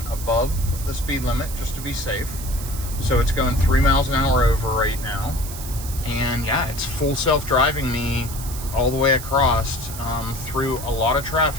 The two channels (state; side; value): noise; right; hiss, 11 dB below the sound